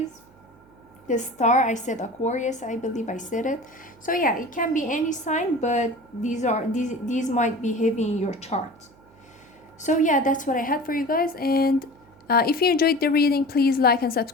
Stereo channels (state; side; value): noise; right; hum, 28 dB below the sound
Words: The star, I said Aquarius, I believe I said it. So yeah, it can be any sign, but these might be heavy in your chart. So yeah, that's what I had for you guys. And if you enjoyed the reading, please like and